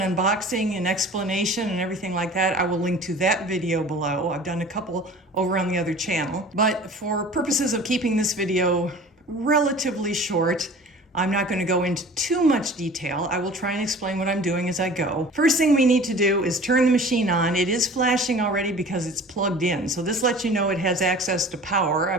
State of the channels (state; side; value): normal; both; correlation 0.43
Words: unboxing and explanation and everything like that, I will link to that video below. I've done a couple over on the other channel. But for purposes of keeping this video relatively short, I'm not going to go into too much detail. I will try and explain what I'm doing as I go. First thing we need to do is turn the machine on. It is flashing already because it's plugged in. So this lets you know it has access to power. I